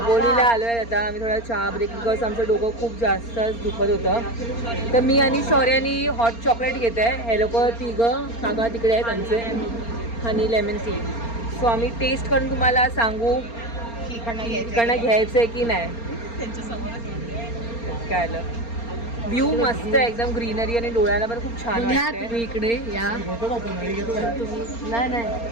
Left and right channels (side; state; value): right; late; 4.3 ms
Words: आलो आहे आता. आम्ही थोडा चहा ब्रेक, बिकॉज आमचं डोकं खूप जास्त दुखत होतं. तर मी आणि शौर्यानी हॉट चॉकलेट घेत आहे. हे लोक 3 काका तिकडे आहेत आमचे, हनी लेमन टी. सो आम्ही टेस्ट करून तुम्हाला सांगू इकडनं घ्यायचं आहे की नाही. काय आलं, व्ह्यू मस्त आहे एकदम, ग्रीनरी आणि डोळ्याला पण खूप छान वाटतंय. तुम्ही इकडे या. नाही